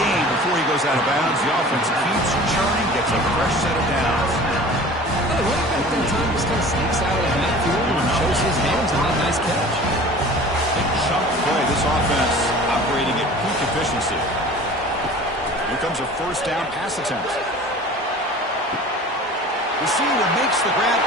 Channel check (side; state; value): both; normal; correlation 0.42